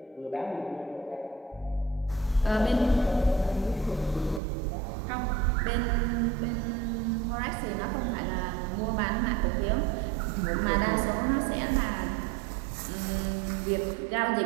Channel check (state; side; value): drops out; left; at 4.4 s